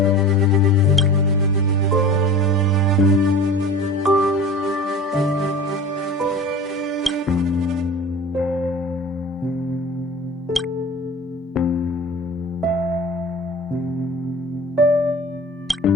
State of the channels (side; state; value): both; normal; correlation 0.38